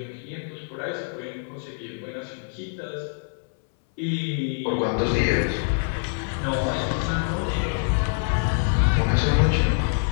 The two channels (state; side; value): silent; right; 61 dB below the other